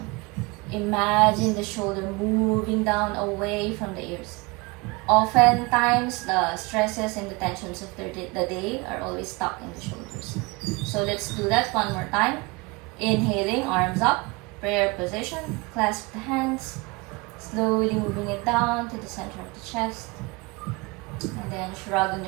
Imagine the shoulder moving down away from the ears. Oftentimes, the stresses and the tensions of the day are always stuck in the shoulders. So let's do that one more time. Inhaling, arms up, prayer position, clasp the hands, slowly moving it down to the center of the chest. And then shrugging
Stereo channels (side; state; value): left; quieter; 26.2 dB